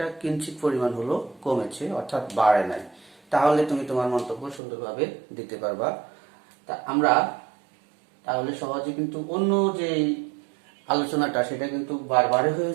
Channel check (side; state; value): left; drops out; at 4.6 s